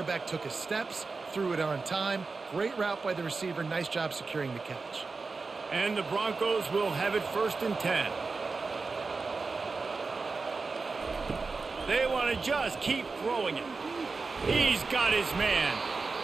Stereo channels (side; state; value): left; quieter; 4.2 dB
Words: took his steps, threw it on time. Great route by the receiver. Nice job securing the catch. And the Broncos will have it 1st and 10. They want to just keep throwing it. He's got his man.